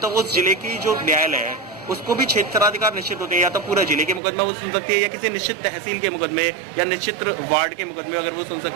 उस जिले की जो न्यायालय है उसको भी क्षेत्राधिकार निश्चित होते हैं। या तो पूरा जिले के मुकदमा वो सुन सकती है या किसी निश्चित तहसील के मुकदमे या निश्चित वार्ड के मुकदमे अगर वो सुन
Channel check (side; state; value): left; drops out; at 4.2 s